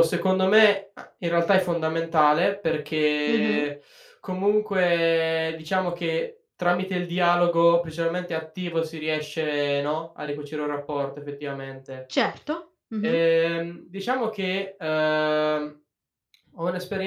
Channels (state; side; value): identical; both; correlation 1.00